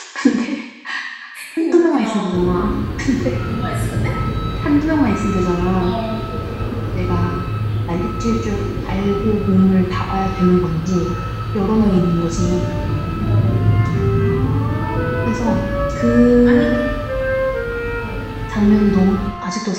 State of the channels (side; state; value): both; identical; correlation 1.00